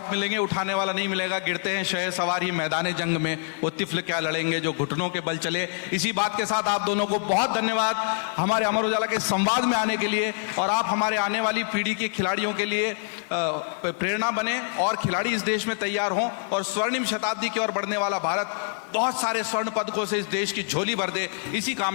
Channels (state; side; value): silent; right; digital silence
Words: मिलेंगे, उठाने वाला नहीं मिलेगा। गिरते हैं शह सवार ही मैदान जंग में, वो तिफल क्या लड़ेंगे जो घुटनों के बल चले। इसी बात के साथ आप दोनों को बहुत धन्यवाद हमारे अमर उजाला के संवाद में आने के लिए, और आप हमारे आने वाली पीढ़ी के खिलाड़ियों के लिए प्रेरणा बने और खिलाड़ी इस देश में तैयार हों, और स्वर्णिम शताब्दी की ओर बढ़ने वाला भारत बहुत सारे स्वर्ण पदकों से इस देश की झोली भर दे। इसी